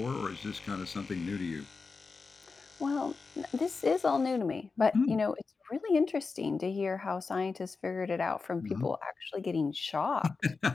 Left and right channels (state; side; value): quieter; right; 4.5 dB